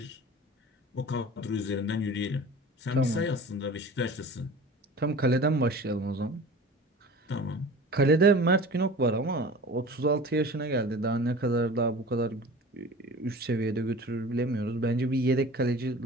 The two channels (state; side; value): normal; both; correlation 0.40